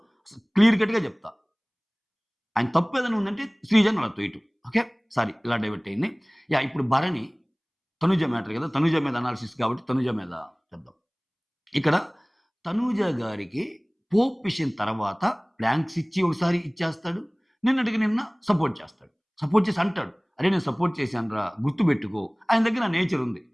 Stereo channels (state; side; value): identical; both; correlation 1.00